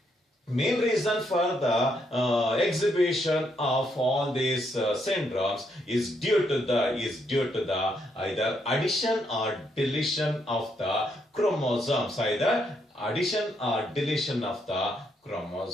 main reason for the exhibition of all these syndromes is due to the either addition or deletion of the chromosomes.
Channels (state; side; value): normal; both; correlation 0.76